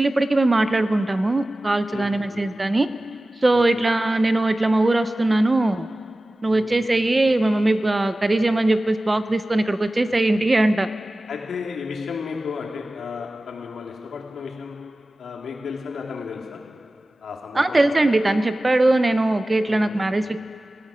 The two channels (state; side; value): normal; both; correlation 0.96